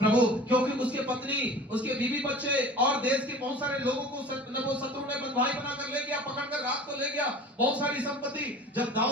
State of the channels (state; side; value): normal; both; correlation 0.41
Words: क्योंकि उसके पत्नी, उसके बीवी बच्चे और देश के बहुत सारे लोगों को वो शत्रु ने बंधुआई बनाकर ले गया, पकड़कर रात को ले गया, बहुत सारी संपत्ति। जब